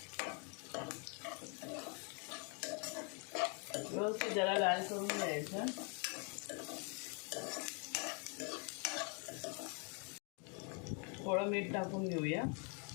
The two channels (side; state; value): right; quieter; 37.4 dB